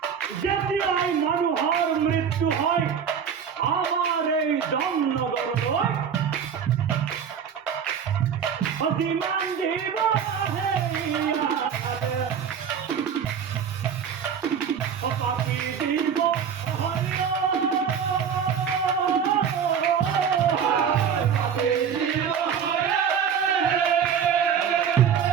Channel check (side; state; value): left; quieter; 7.5 dB